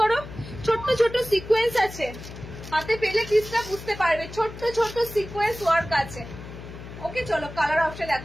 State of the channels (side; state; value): left; noise; hum, 13 dB below the sound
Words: ছোট্ট ছোট্ট সিকোয়েন্স আছে, হাতে পেলে পিসটা বুঝতে পারবে, ছোট্ট ছোট্ট সিকোয়েন্স ওয়ার্ক আছে। ওকে, চলো কালার অপশন